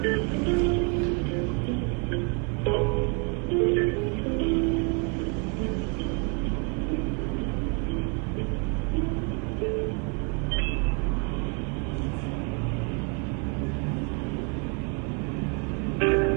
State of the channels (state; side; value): quieter; left; 35.1 dB